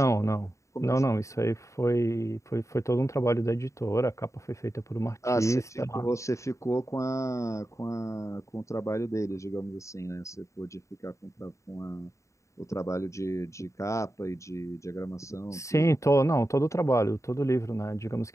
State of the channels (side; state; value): right; late; 0.15 ms